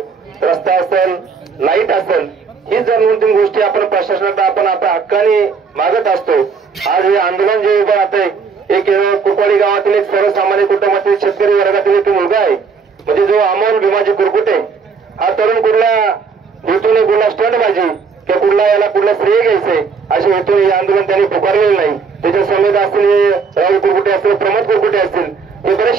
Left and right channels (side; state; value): left; quieter; 5.4 dB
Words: रस्ता असेल, लाईट असेल, ही जर 2-3 गोष्टी आपण प्रशासनाला आपण आपल्या हक्काने मागत असतो। आज हे आंदोलन जे उभं राहतंय, एक कुरकोडी गावातील एक सर्वसामान्य कुटुंबातील शेतकरी वर्गातील एक मुलगा आहे, म्हणजे जो अमोल भीमाजी कुरकुटे। हा तरुण कुठला हेतूने कुठला स्टंटबाजी किंवा कुठला याला कुठला श्रेय घ्यायचंय अशा हेतूने हे आंदोलन त्यांनी पुकारलेलं नाही। त्याच्या समेत असतील राहुल कुरकुटे असतील, प्रमोद कुरकुटे असतील, हे